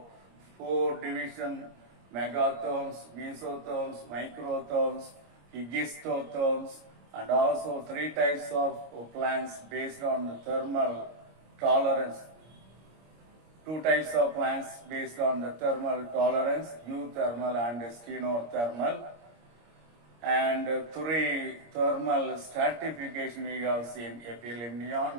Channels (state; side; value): late; left; 26 ms